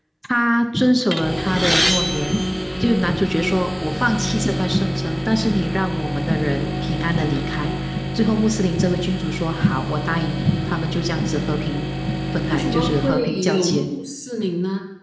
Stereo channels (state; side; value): identical; both; correlation 1.00